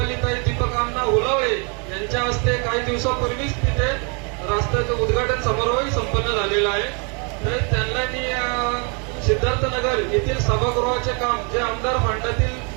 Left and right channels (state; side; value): quieter; left; 35.9 dB